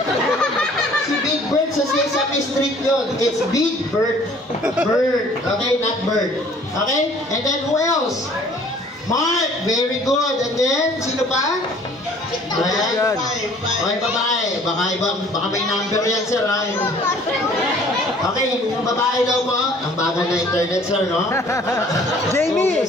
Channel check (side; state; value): both; normal; correlation 0.54